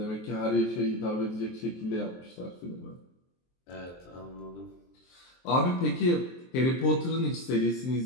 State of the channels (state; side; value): late; right; 23 ms